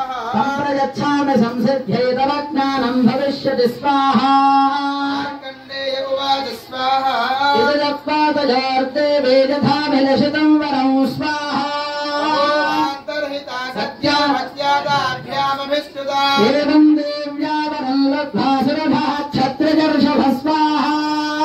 సంప్రయచ్ఛామి సంసిద్ధ్యై తవ జ్ఞానం భవిష్యతి స్వాహా. మార్కండేయ ఉవాచ స్వాహా ఇదత్వాదజార్తే వేదధామిలషితం వరం స్వాహా. ఏవం దేవ్యావరం లబ్ధ్వా సురభః క్షత్రజర్షభ స్వాహా.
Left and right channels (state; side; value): identical; both; correlation 1.00